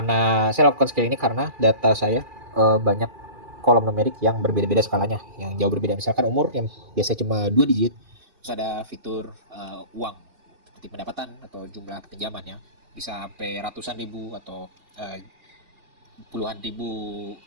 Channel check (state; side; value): late; left; 2.4 ms